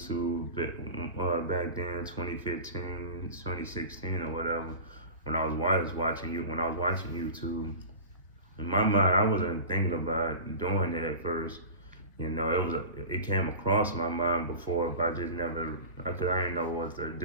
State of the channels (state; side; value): inverted; both; correlation -0.34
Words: back then, 2015, 2016, or whatever. When I was watching YouTube, in my mind, I wasn't thinking about doing it at first. It came across my mind before, but I just never, I didn't know what to